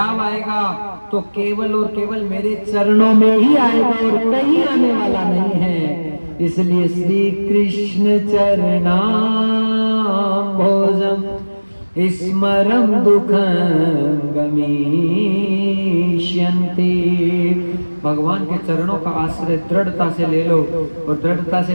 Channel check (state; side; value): inverted; both; correlation -1.00